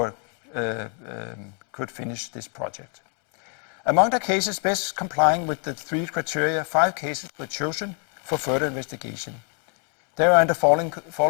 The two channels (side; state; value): right; quieter; 38.0 dB